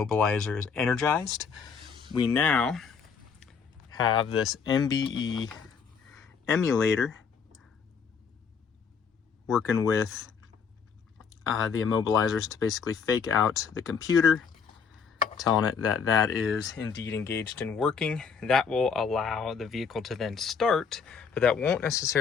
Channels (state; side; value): quieter; right; 6.2 dB